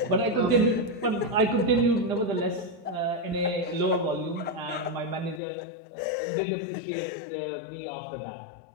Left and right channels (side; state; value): right; drops out; at 5.4 s